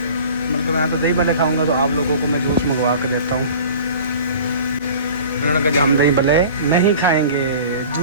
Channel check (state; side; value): inverted; both; correlation -0.42